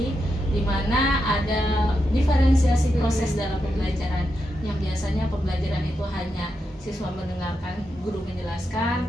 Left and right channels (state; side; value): normal; both; correlation 0.86